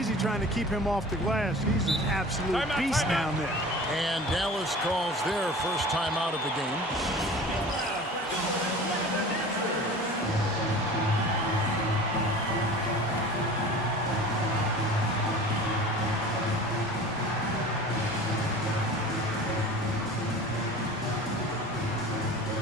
trying to keep him off the glass. He's an absolute beast down there. And Dallas calls their first time out of the game.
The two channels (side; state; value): both; normal; correlation 0.40